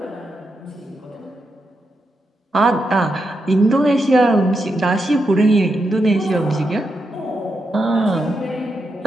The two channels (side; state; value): both; normal; correlation 0.84